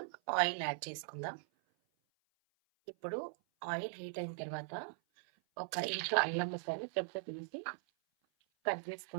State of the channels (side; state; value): left; silent; 51 dB below the other